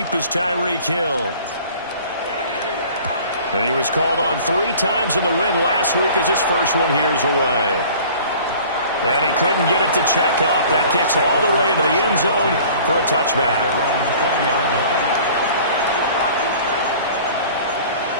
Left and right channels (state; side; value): inverted; both; correlation -0.47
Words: is Tyreek Hill. And he was called on 3 times in the win last week as his first one here's away. And he couldn't get it to check up. That kicks all the way into the end zone for a touchback.